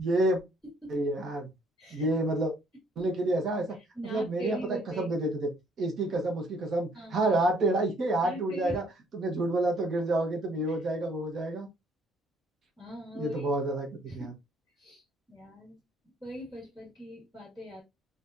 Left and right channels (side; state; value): both; normal; correlation 0.64